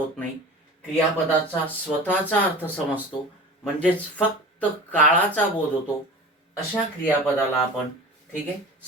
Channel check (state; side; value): normal; both; correlation 0.35